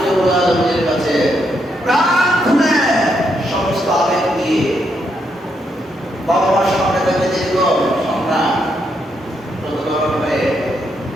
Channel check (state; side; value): normal; both; correlation 0.78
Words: রব্বুল আলামিনের কাছে প্রার্থনা সমস্ত আবেগ দিয়ে বাবা মার সামনে থেকে দীর্ঘ সংগ্রাম কত ধরন হয়ে